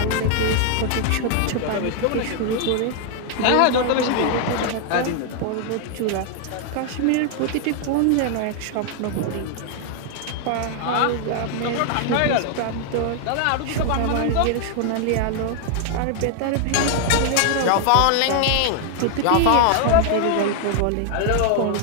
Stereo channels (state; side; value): different; both; correlation 0.00